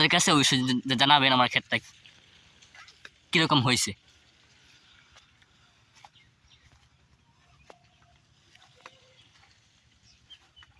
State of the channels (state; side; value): identical; both; correlation 1.00